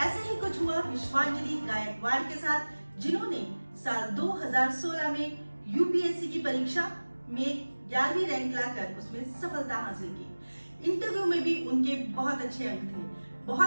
ही कुछ हुआ विश्वांजलि गायकवाड़ के साथ, जिन्होंने साल 2016 में यूपीएससी की परीक्षा में 11वीं रैंक लाकर उसमें सफलता हासिल की। इंटरव्यू में भी उनके बहुत अच्छे अंक थे।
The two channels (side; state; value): both; inverted; correlation -1.00